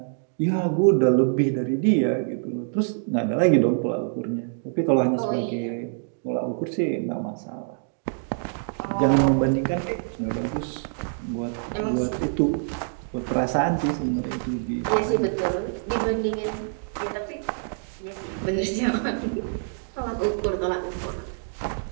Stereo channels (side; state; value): left; silent; digital silence